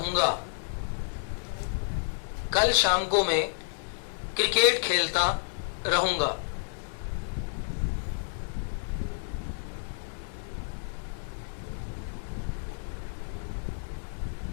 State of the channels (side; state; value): right; silent; digital silence